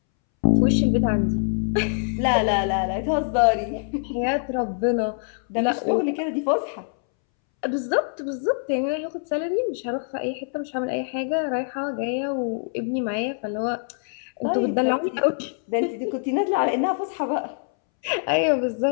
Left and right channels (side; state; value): right; silent; 62 dB below the other